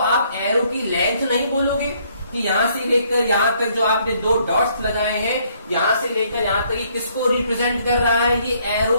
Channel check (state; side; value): inverted; both; correlation -0.67